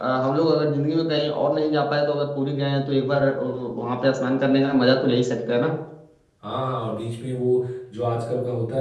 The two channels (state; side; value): identical; both; correlation 1.00